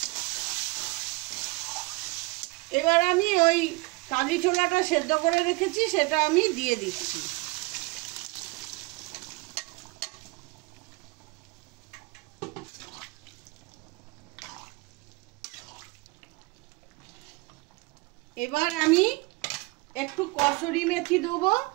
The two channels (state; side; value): quieter; left; 25.4 dB